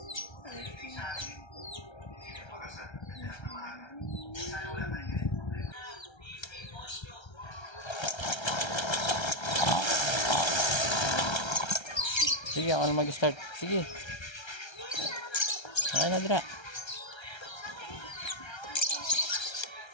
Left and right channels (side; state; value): right; late; 1.3 ms